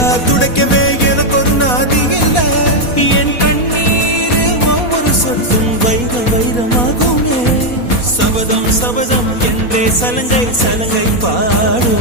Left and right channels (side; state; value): right; late; 4.2 ms